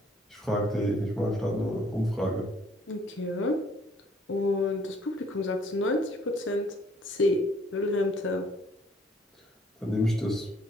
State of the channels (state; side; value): normal; both; correlation 0.62